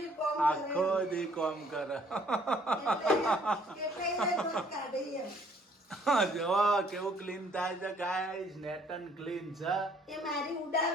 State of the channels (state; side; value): normal; both; correlation 0.61